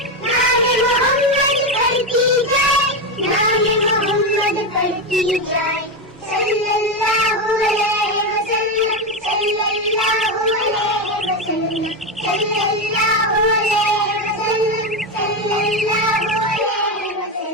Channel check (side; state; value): both; normal; correlation 0.13